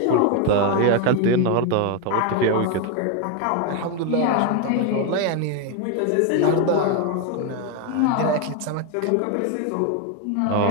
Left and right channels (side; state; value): both; different; correlation 0.01